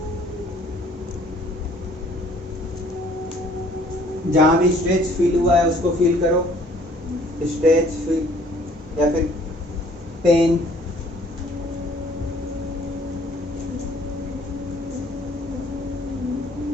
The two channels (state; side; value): normal; both; correlation 0.58